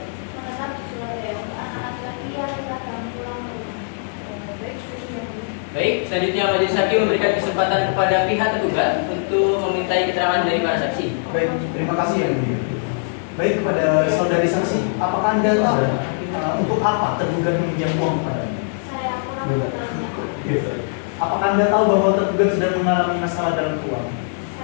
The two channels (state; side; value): silent; right; digital silence